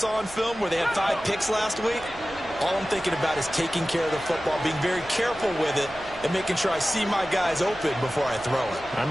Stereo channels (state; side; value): noise; right; hum, 19 dB below the sound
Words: on film where they had 5 picks last week, all I'm thinking about is taking care of the football, being very careful with it, and making sure I see my guys open before I throw it. I